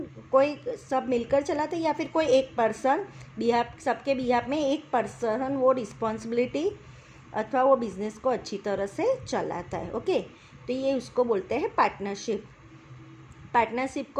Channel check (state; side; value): identical; both; correlation 1.00